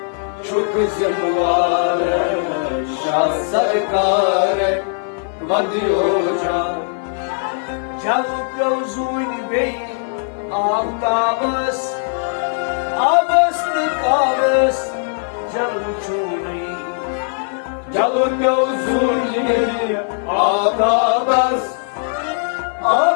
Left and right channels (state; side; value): silent; right; 59 dB below the other